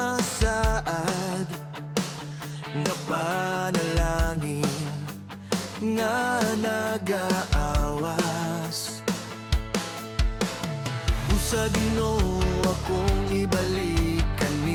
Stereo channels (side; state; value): both; identical; correlation 1.00